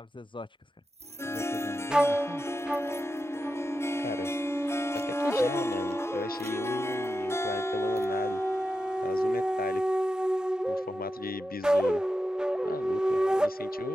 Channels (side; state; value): both; normal; correlation 0.90